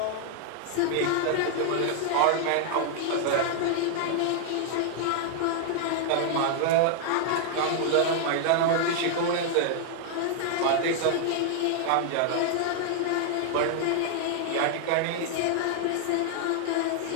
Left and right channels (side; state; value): both; different; correlation 0.00